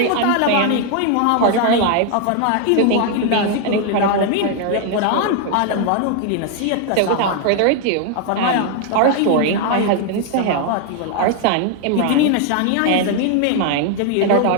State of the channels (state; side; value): different; both; correlation 0.00